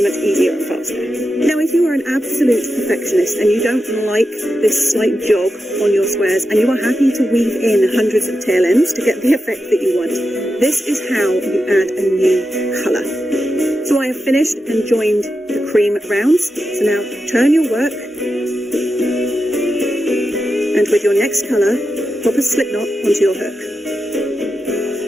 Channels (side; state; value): both; normal; correlation 0.89